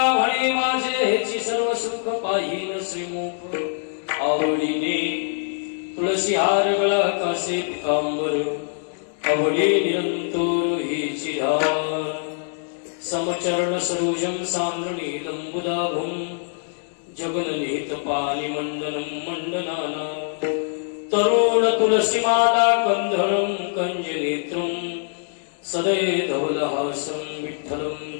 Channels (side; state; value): right; silent; digital silence